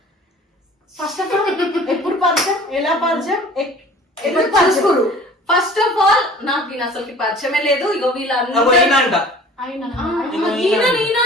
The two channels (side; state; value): both; normal; correlation 0.46